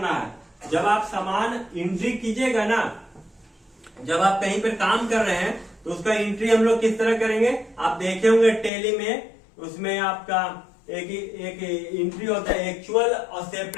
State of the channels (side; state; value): right; drops out; at 8.7 s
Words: है। जब आप सामान एंट्री कीजिएगा ना, जब आप कहीं पर काम कर रहे हैं तो उसका एंट्री हम लोग किस तरह करेंगे? आप देखे होंगे टैली में, उसमें आपका एक एंट्री होता है एक्चुअल और